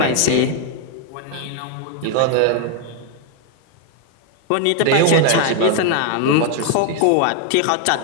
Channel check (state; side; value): different; both; correlation 0.00